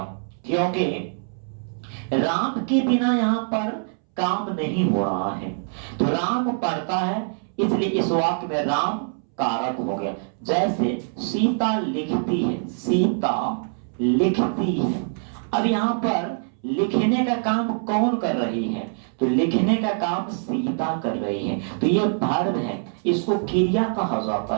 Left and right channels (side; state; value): left; silent; 63 dB below the other